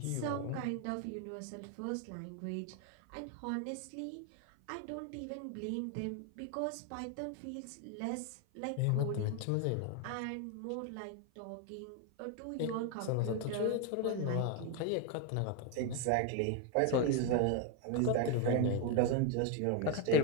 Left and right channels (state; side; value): different; both; correlation 0.01